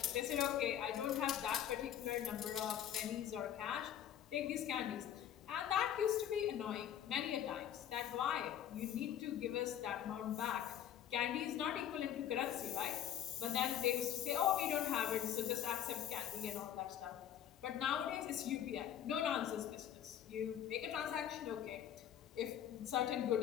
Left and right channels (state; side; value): quieter; right; 10.2 dB